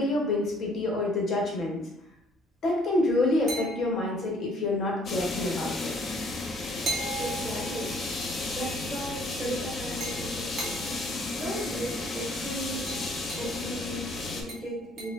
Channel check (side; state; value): both; normal; correlation 0.61